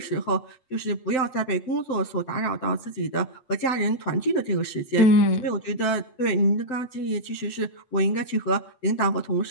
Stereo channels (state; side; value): late; right; 7.8 ms